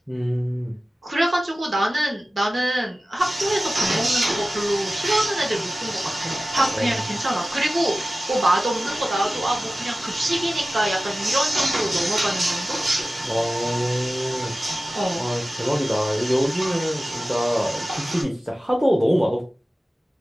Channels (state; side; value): normal; both; correlation 0.96